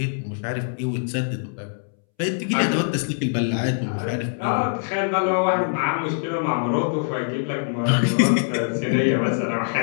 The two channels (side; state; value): right; silent; 63 dB below the other